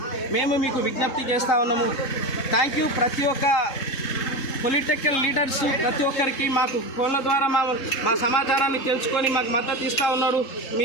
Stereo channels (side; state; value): right; late; 3.7 ms